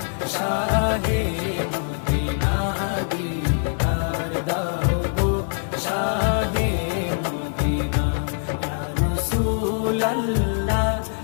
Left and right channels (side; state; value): right; silent; 63 dB below the other